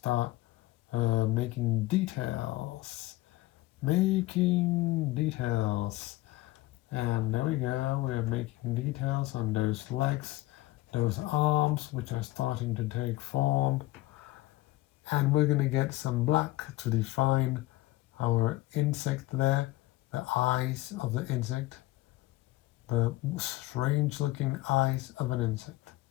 making details. And there we go. We're making details on those legs, those arms, which are starting to take form. And we're gonna get some black to define our insect there, the eyes of the insect, the strange looking eyes of an insect.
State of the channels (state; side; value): quieter; right; 18.0 dB